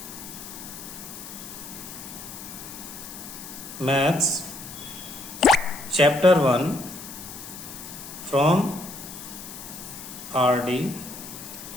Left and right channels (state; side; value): noise; left; hiss, 12 dB below the sound